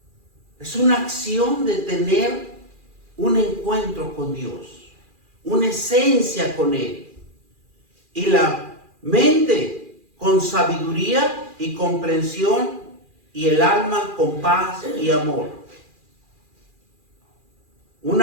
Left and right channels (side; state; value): left; late; 2.4 ms